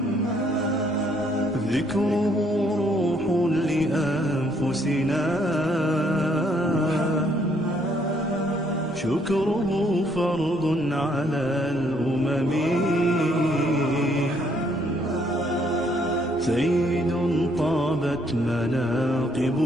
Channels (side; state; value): both; normal; correlation 0.68